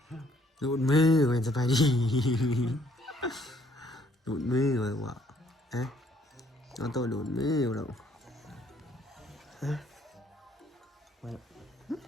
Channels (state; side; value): normal; both; correlation 0.65